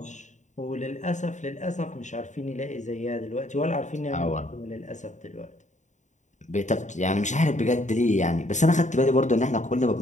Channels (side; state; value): right; late; 0.35 ms